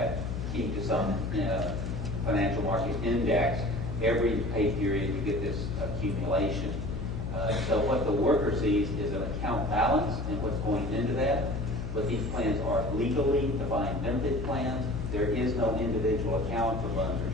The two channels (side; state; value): left; noise; hum, 4 dB below the sound